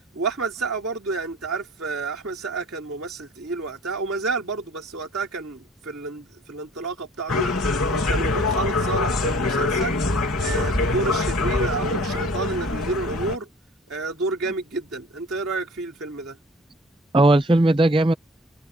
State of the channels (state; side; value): normal; both; correlation 0.49